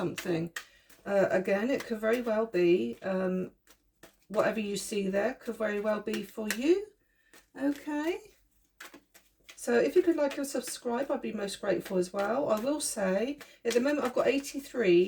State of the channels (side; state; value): both; identical; correlation 1.00